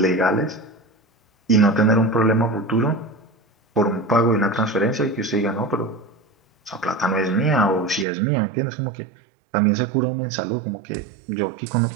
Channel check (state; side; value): drops out; left; at 8.1 s